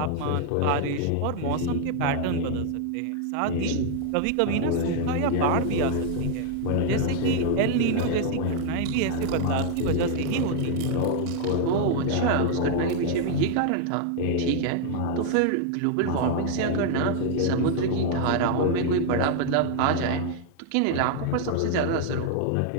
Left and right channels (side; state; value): both; different; correlation 0.00